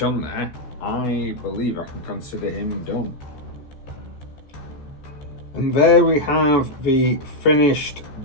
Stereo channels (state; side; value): late; right; 14 ms